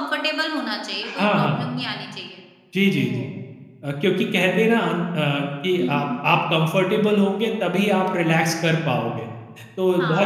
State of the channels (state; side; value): identical; both; correlation 1.00